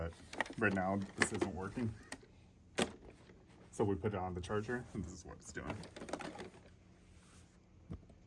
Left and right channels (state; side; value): identical; both; correlation 1.00